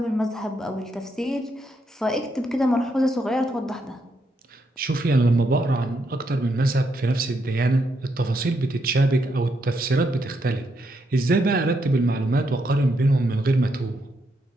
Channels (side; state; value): both; normal; correlation 0.79